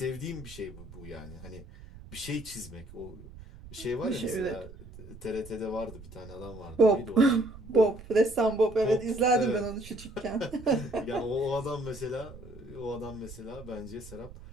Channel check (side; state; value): right; noise; rumble, 16 dB below the sound